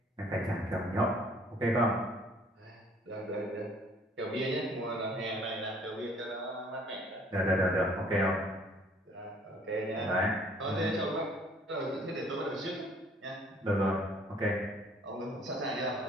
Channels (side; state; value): both; normal; correlation 0.58